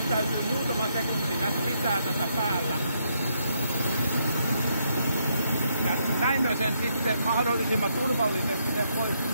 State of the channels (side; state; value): both; inverted; correlation -0.76